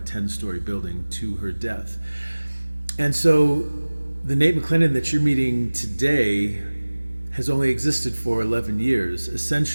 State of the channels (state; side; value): inverted; both; correlation -1.00